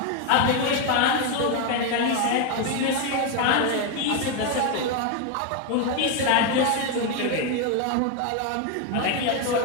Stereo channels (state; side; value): different; both; correlation 0.01